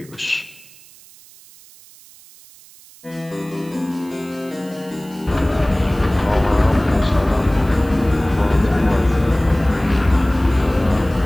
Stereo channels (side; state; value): right; noise; hiss, 23 dB below the sound